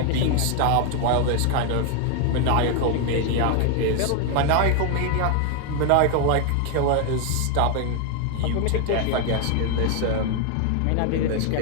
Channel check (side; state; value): both; different; correlation 0.01